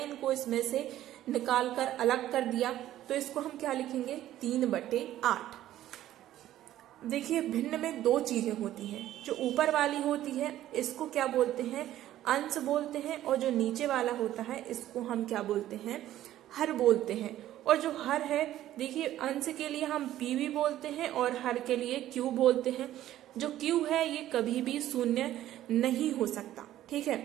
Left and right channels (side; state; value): left; quieter; 13.2 dB